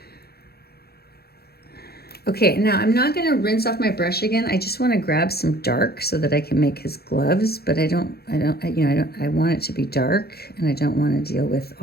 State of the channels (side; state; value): right; late; 0.46 ms